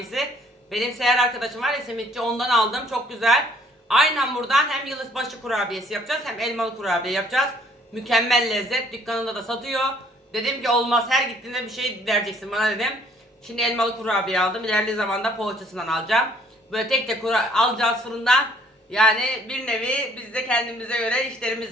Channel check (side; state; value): both; normal; correlation 0.61